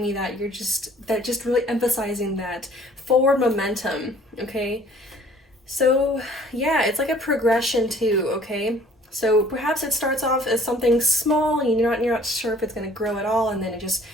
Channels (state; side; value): normal; both; correlation 0.54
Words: me that just really emphasizing that forward momentum. Okay, so yeah, it's like a progression too. Okay, so perhaps it starts off as something small and you're not sure if it's going to grow at all, and then it just